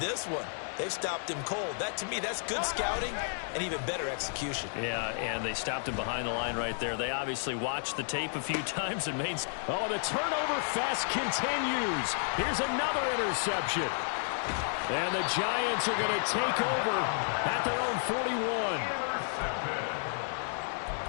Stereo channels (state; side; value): silent; right; digital silence